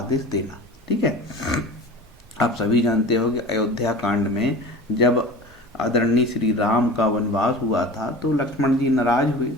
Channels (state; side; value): normal; both; correlation 0.36